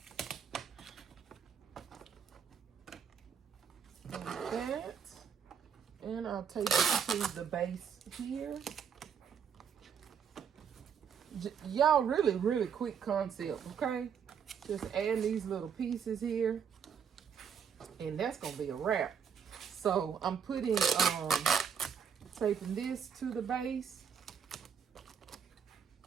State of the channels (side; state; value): left; quieter; 7.4 dB